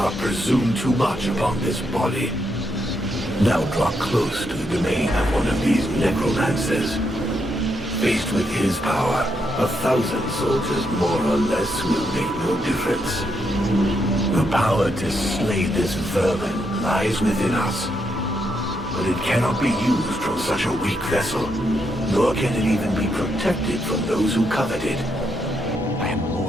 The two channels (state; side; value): normal; both; correlation 0.79